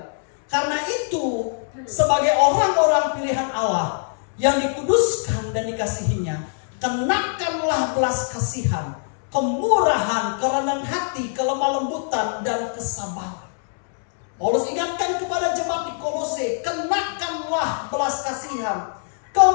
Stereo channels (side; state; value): right; silent; 64 dB below the other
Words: Karena itu sebagai orang-orang pilihan Allah yang dikuduskan dan dikasihinya, kenakanlah belas kasihan, kemurahan, kerendahan hati, kelemah lembutan dan kesabaran. Paulus ingatkan kepada jemaat di Kolose, kenakanlah belas kasihan,